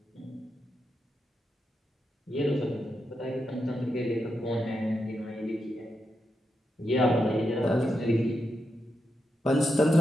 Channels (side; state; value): both; normal; correlation 0.85